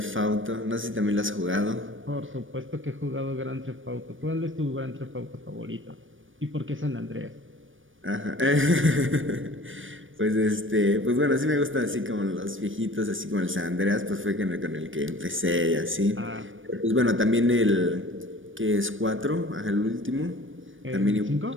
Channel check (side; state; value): left; late; 0.57 ms